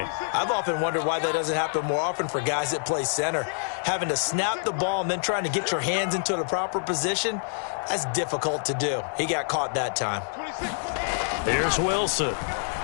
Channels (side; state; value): right; silent; digital silence